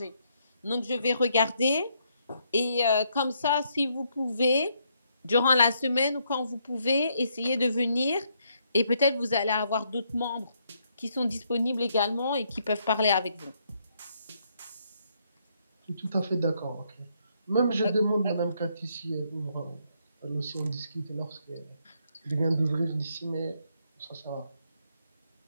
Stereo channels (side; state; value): both; inverted; correlation -0.74